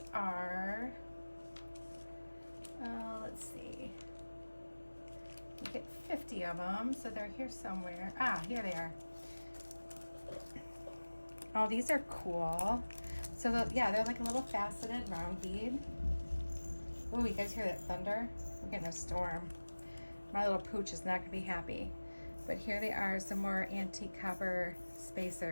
are, let's see. You get 50 of them, so they're here somewhere. Ah, here they are. Oh, these are cool. So, yeah, they're like a little faceted round bead. Ooh, you guys hear that thunder? We're getting a storm. My little pooch is not going to be happy. But here they are, some more antique copper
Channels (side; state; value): both; inverted; correlation -1.00